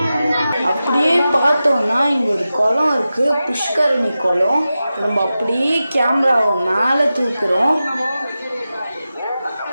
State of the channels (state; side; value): inverted; both; correlation -0.93